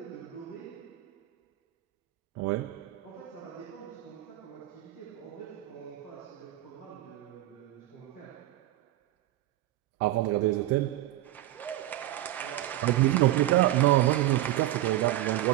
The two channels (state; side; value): quieter; left; 15.0 dB